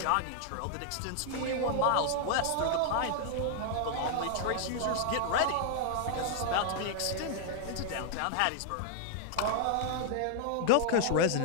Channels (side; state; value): both; different; correlation -0.01